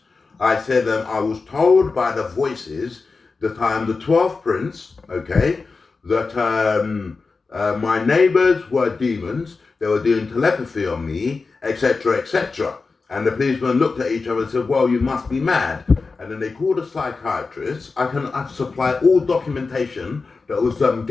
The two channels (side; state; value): right; quieter; 4.2 dB